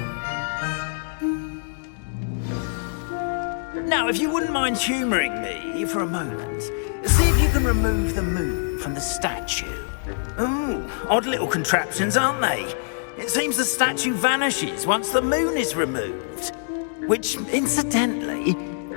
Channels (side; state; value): right; silent; digital silence